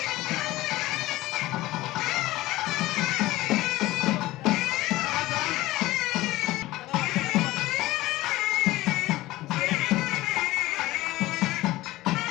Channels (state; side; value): quieter; right; 17.7 dB